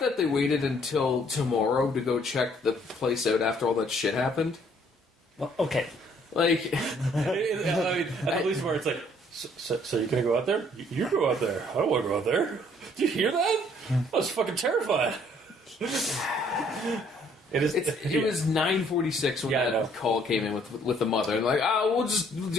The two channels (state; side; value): normal; both; correlation 0.62